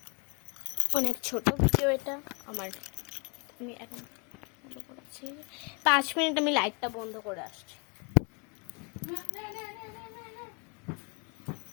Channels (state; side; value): quieter; right; 33.3 dB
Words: অনেক ছোট ভিডিও এটা আমার। আমি এখন বন্ধ করেছি 5 মিনিট, আমি লাইটটা বন্ধ করে আসছি।